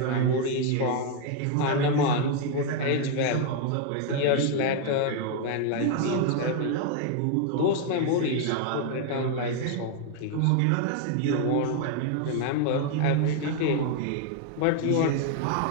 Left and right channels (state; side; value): different; both; correlation 0.00